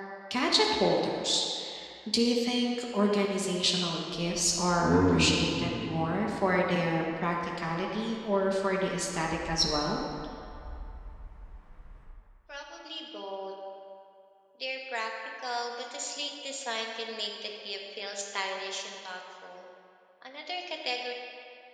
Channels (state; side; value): identical; both; correlation 1.00